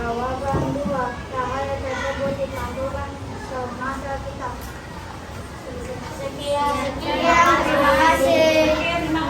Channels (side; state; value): both; identical; correlation 1.00